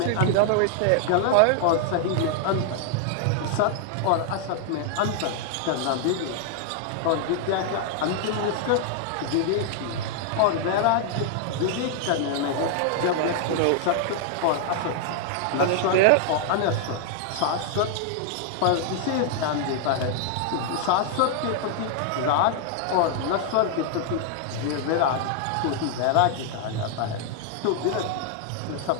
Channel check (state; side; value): different; both; correlation 0.00